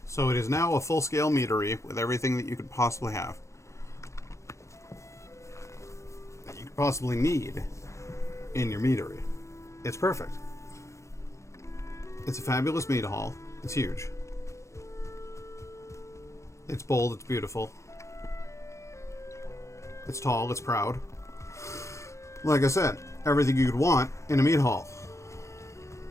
So it is now a full-scale meadery with everything that you could possibly have. That you could possibly need in your meadery. It's perfect. It's a fabulous mead hall. It's huge. It's bold, it's beautiful. It's tall, it's proud. Like I said, everything you could want in a meat hall.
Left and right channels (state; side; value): late; right; 0.14 ms